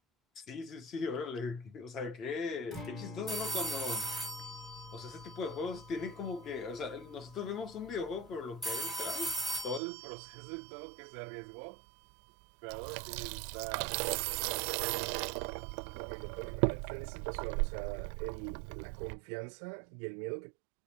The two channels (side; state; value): left; drops out; at 9.8 s